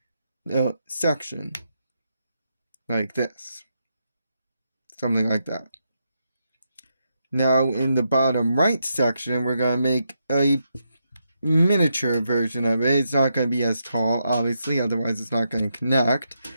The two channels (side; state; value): both; inverted; correlation -0.82